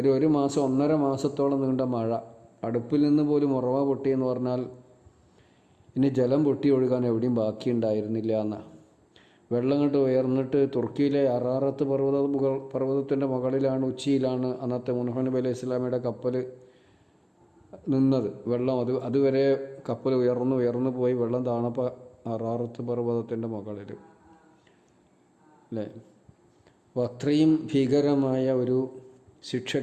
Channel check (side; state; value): both; identical; correlation 1.00